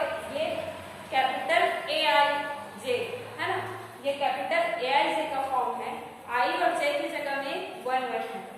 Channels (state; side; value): identical; both; correlation 1.00